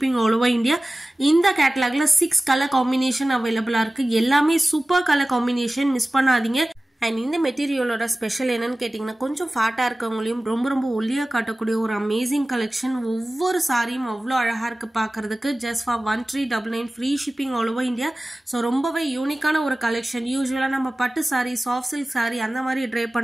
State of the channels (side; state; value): both; normal; correlation 0.97